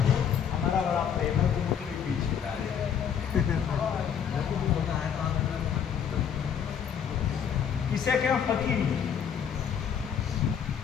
जी हमारा बड़ा प्रेम है, तुम मुझे पीछे ला रहे। किसे कहें फकीरी?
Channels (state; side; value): quieter; right; 8.0 dB